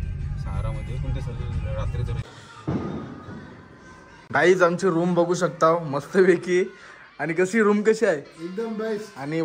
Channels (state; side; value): identical; both; correlation 1.00